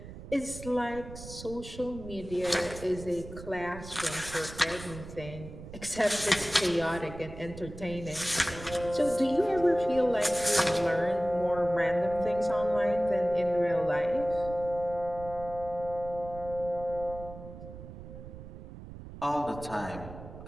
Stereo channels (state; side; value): noise; right; rumble, 13 dB below the sound